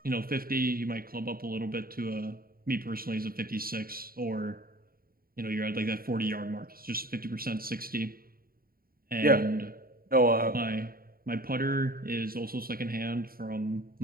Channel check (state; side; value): late; left; 0.43 ms